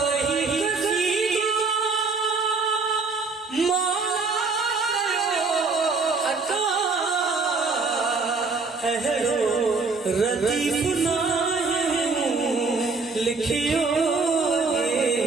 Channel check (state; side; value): quieter; left; 4.3 dB